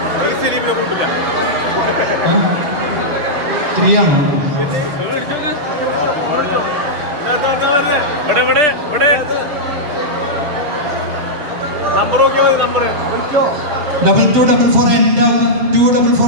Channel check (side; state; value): left; late; 7.3 ms